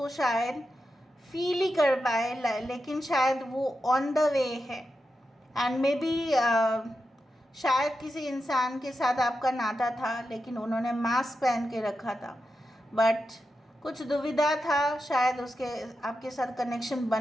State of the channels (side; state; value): both; normal; correlation 0.89